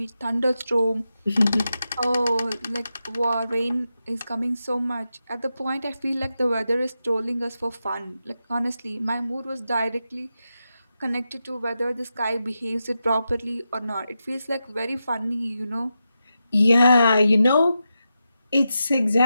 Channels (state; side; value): inverted; both; correlation -0.89